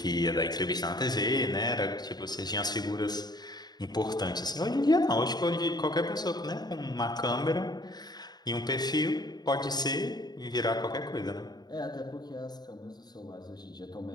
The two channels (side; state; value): right; late; 0.20 ms